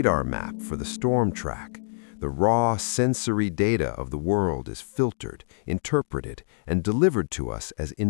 map for the storm track. The raw sensory data of the world is filtered, interpreted, and delivered to us as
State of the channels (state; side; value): silent; right; digital silence